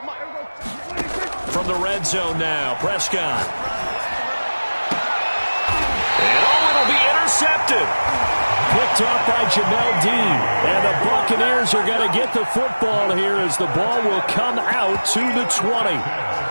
From the red zone now, Prescott. And it'll be intercepted. Picked off by Jamel Dean. And the Buccaneers are going to get the football here as the ball will come out to the 20.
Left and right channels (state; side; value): inverted; both; correlation -1.00